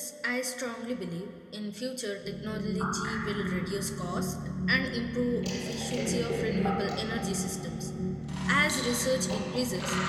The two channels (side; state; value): both; identical; correlation 1.00